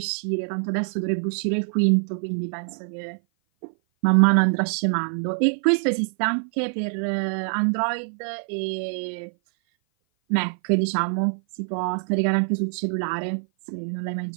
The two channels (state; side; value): silent; left; 56 dB below the other